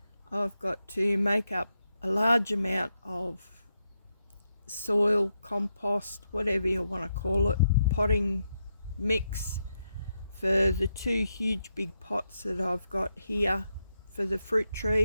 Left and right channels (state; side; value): inverted; both; correlation -0.83